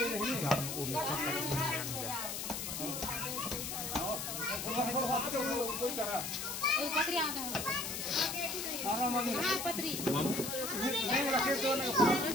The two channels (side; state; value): left; noise; hiss, 4 dB below the sound